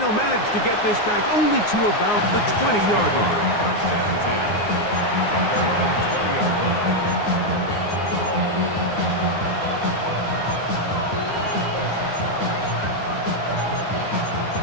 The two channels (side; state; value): right; late; 9.6 ms